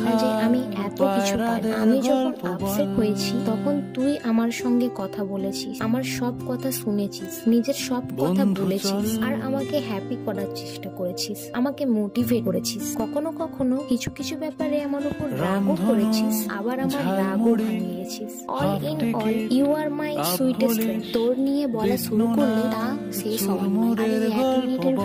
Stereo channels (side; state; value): both; identical; correlation 1.00